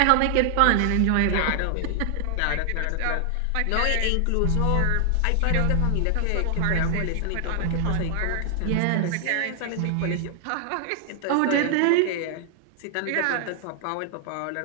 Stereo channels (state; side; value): different; both; correlation 0.00